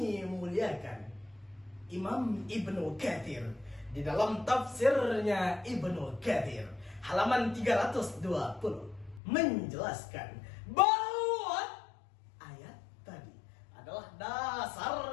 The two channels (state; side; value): drops out; right; at 9.2 s